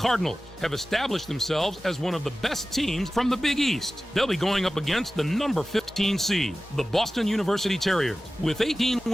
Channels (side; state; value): both; normal; correlation 0.96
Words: have established themselves as one of the best teams from the Big East. They'll be going up against the number 15 seed, the Boston University Terriers, with 18